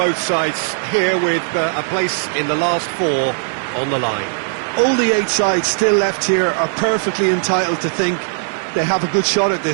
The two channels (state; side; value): silent; left; digital silence